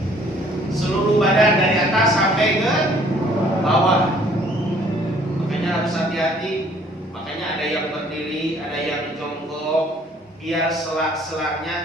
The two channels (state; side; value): normal; both; correlation 0.58